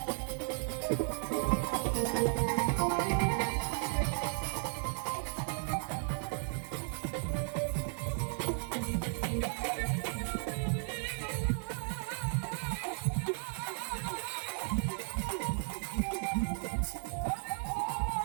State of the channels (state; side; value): silent; left; 55 dB below the other